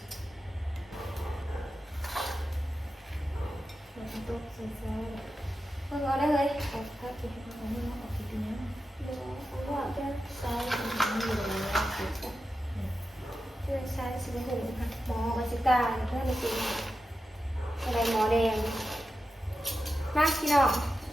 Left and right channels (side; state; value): both; normal; correlation 0.90